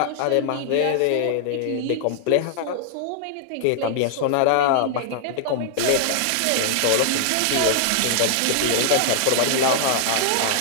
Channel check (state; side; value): different; both; correlation -0.01